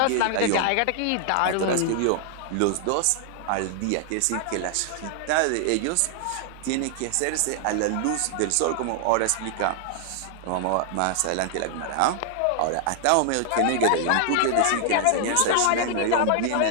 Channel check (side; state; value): both; different; correlation 0.00